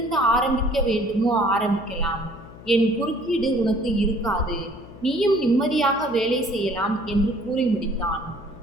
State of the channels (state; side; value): noise; left; hum, 18 dB below the sound